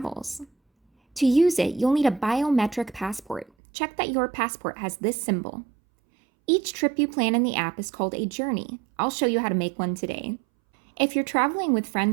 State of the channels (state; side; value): drops out; left; at 3.5 s